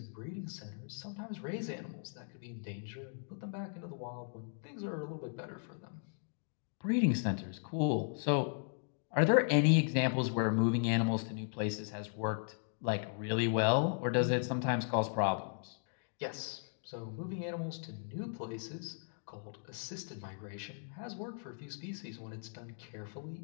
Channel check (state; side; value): silent; right; digital silence